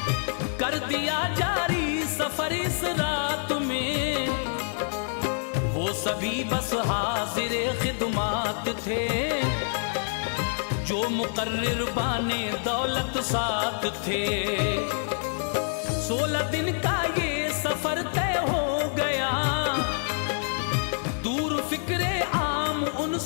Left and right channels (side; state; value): right; silent; 60 dB below the other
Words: कर दिया जारी सफर इस रात में। वो सभी बस हाजिर खिदमात थे, जो मुकर्रिर बाने दौलत साथ थे। 16 दिन का ये सफर तय हो गया, दूर फिक्रे आम